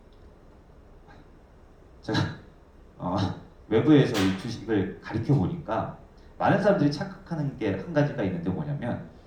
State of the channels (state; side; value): identical; both; correlation 1.00